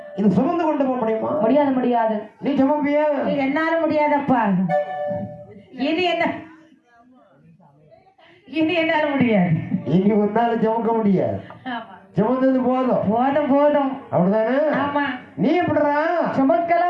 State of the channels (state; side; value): identical; both; correlation 1.00